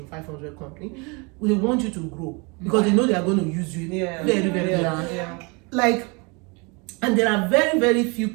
500 companies, they want you to grow because they know they are going to use you very well. Like, and there are very, very few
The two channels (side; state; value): left; quieter; 30.1 dB